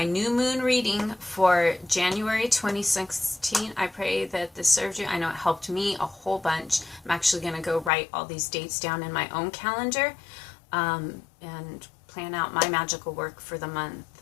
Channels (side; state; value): right; drops out; at 7.9 s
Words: new moon reading for January 2016. I pray that this served you. I know it helped me a whole bunch. I'm actually going to go write all these dates down in my own calendar and plan out my magical work for the month.